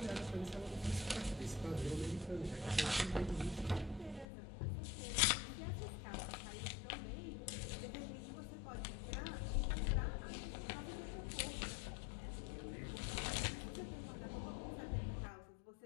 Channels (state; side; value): drops out; right; at 4.2 s